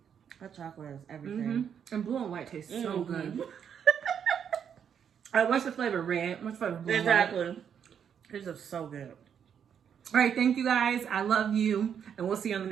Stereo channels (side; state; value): left; quieter; 8.0 dB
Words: That chocolate is everything. And blue and white tastes so good. All right, what's the flavor? Red? What's the flavor? Blue Exactly. This is so good. All right, thank you guys. I love you. And we'll see you on the